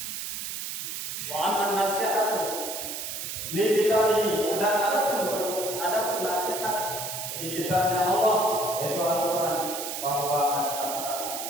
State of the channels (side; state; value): right; noise; hiss, 5 dB below the sound